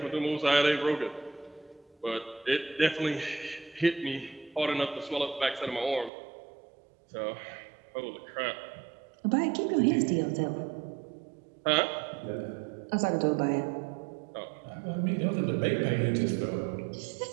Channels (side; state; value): left; drops out; at 6.1 s